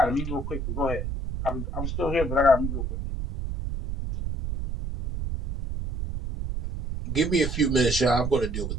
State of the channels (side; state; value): right; noise; rumble, 4 dB below the sound